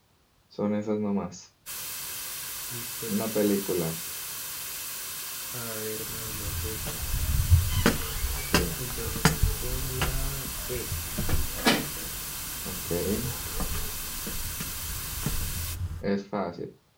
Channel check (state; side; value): identical; both; correlation 1.00